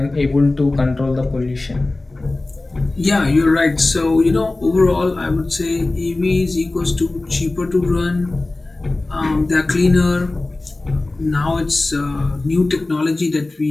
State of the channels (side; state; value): right; quieter; 3.0 dB